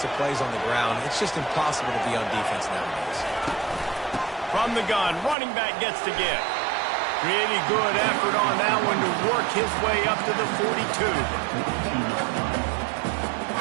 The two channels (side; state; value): left; drops out; at 5.4 s